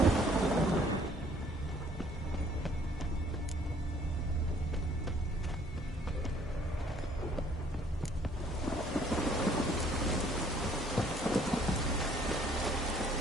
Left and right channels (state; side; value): normal; both; correlation 0.60